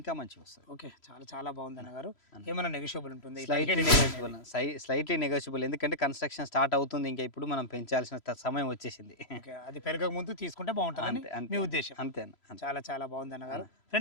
మంచిగా వస్తుంది. ఓకే, చాలా చాలా బాగుంది అన్నగారు. ఏమైనా నెగోషియబుల్ ఉంటుంది? Slightly negotiable. ఎందుకంటే కన్స్ట్రక్షన్ స్టార్ట్ అవుతుంది. ఇంకా ఇప్పుడు మనం పెంచాల్సిన సమయం వచ్చేసింది. ఓకే, అది పెరగక ముందు తీసుకుంటే బాగుంటుందని మీ ఉద్దేశం? అంతే. చాలా చాలా బాగుంది అన్నగారు.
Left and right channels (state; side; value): late; right; 3.0 ms